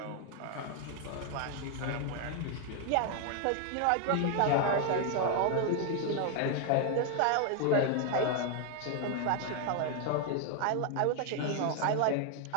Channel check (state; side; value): different; both; correlation 0.01